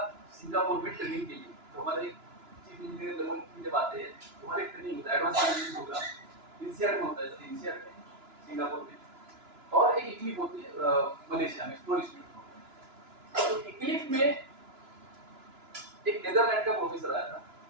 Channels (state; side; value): late; left; 2.9 ms